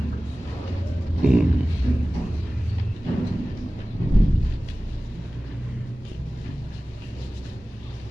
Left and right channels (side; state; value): both; normal; correlation 0.97